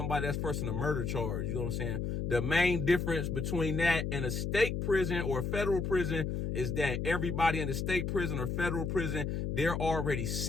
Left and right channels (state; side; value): noise; left; hum, 2 dB below the sound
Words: that's first in a murder charge. You know what I'm saying? The main difference between that and a state prison or a federal prison is that everybody in the state prison or federal prison, they're already